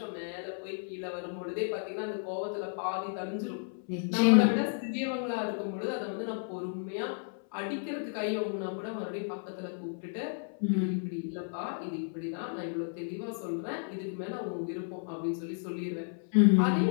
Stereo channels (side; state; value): right; silent; 56 dB below the other